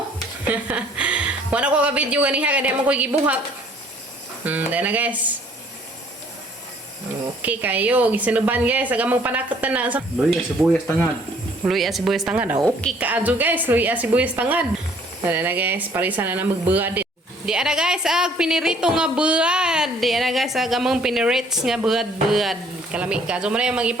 Wala ko ka-video ganiha. Kaya mo ko gibuhat. Dera na guys. Okay kayo. Gisinuban guys. Agang magpanakot na na. Luya, sibuyas tangad. Luya sibuyas tangad. Okay ka ajo guys. Luya sibuyas tangad. Dera na guys. Parisa na na magbuhat. Di ana guys, pinirito nga buad. Di ana guys, among pinirits nga buad-buad. Kalami ka. So, muna yung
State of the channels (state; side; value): normal; both; correlation 0.59